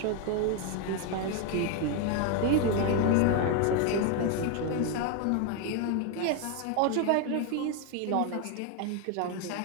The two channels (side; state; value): both; different; correlation 0.01